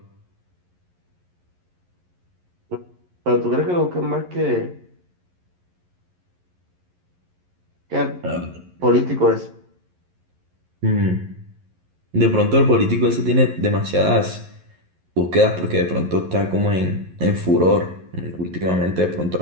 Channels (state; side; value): late; left; 11 ms